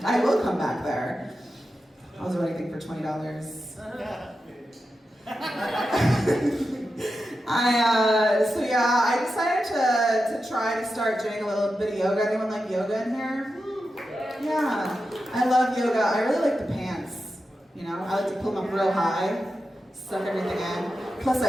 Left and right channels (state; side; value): normal; both; correlation 0.90